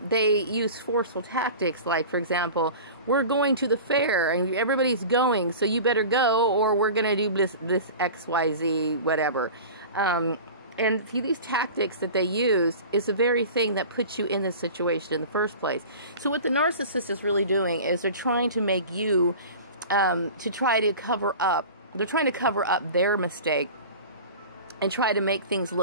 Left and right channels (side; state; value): both; inverted; correlation -0.37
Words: They use forceful tactics, like, for example, we're going to the fair and everybody's going, so you better go, or we're going to do this XYZ, whatever. And see, these tactics that they use is the very thing that puts you in this situation in the first place. So what the narcissist is really doing is they're trying to make you, to try to cover up, they're trying to cover up their mistake and try to make things